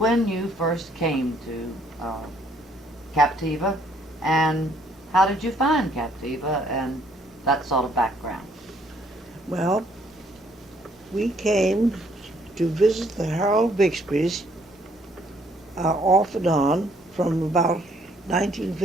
you first came to Captiva, and how did you find Captiva, and that sort of background. Well, we came to visit the Harold Bixbys off and on from about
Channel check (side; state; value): both; normal; correlation 0.65